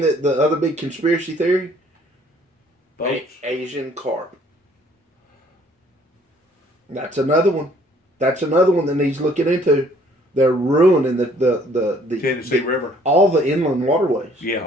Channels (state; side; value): normal; both; correlation 0.60